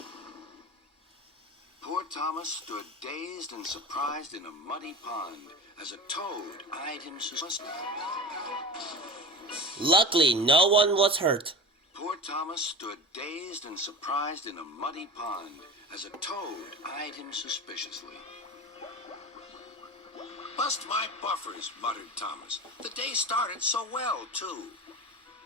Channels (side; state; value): both; normal; correlation 0.31